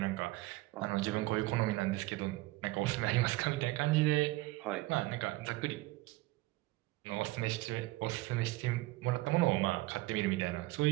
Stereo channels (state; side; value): quieter; left; 20.2 dB